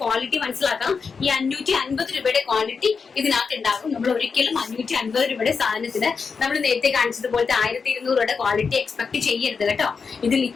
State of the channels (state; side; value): quieter; right; 5.3 dB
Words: ക്വാളിറ്റി മനസ്സിലാക്കാം. ഈ 550 രൂപയുടെ ക്വാളിറ്റി ഇതിനകത്ത് ഉണ്ടാകും. നമ്മൾ ഒരിക്കലും 550 രൂപയുടെ സാധനത്തിന് നമ്മൾ നേരത്തെ കാണിച്ചതുപോലത്തെ 1200 രൂപയുടെ ക്വാളിറ്റി എക്സ്പെക്ട് ചെയ്യരുത് കേട്ടോ. ഇത്